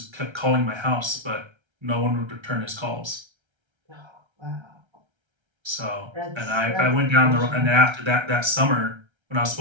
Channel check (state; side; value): late; left; 1.3 ms